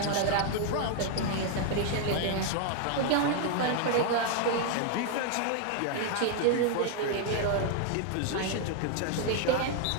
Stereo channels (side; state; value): both; different; correlation 0.00